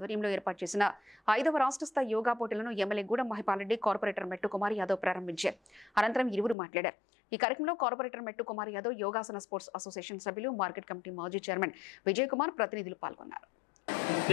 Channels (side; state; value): right; drops out; at 6.6 s